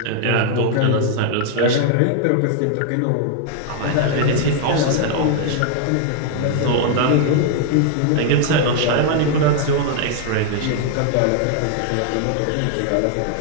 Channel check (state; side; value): different; both; correlation 0.00